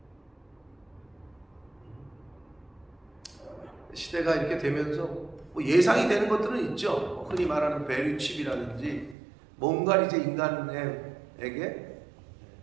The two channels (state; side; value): drops out; left; at 9.2 s